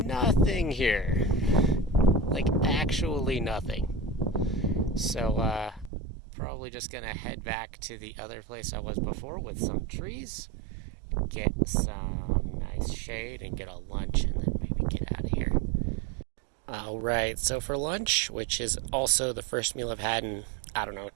here. Like, actually nothing. So, probably just gonna head back to the other place I was before with some trees, get some nice shade, and get a lunch, and then maybe get out of here. Alright, so for lunch, which is also the first meal I've had in,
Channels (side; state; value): left; drops out; at 5.9 s